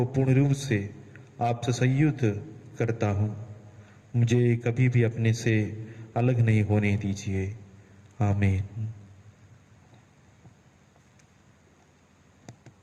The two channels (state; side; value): identical; both; correlation 1.00